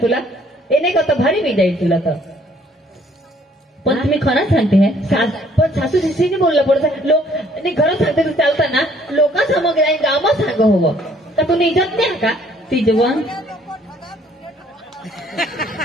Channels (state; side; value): normal; both; correlation 0.61